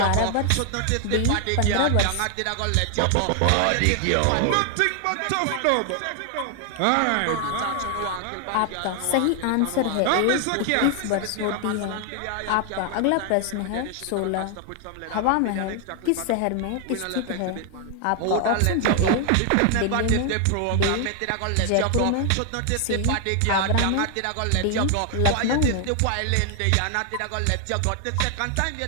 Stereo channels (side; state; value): both; different; correlation 0.00